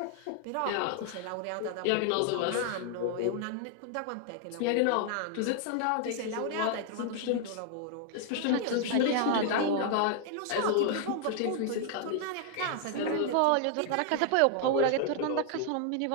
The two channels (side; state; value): both; different; correlation 0.00